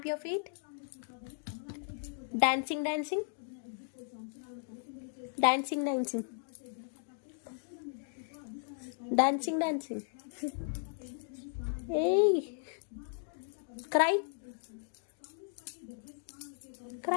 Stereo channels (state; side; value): silent; right; digital silence